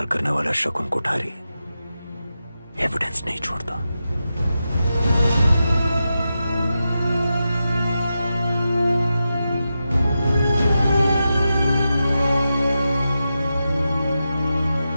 करने वाला शकुन कोठारी एविडेंस नहीं छोड़ता।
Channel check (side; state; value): both; inverted; correlation -0.90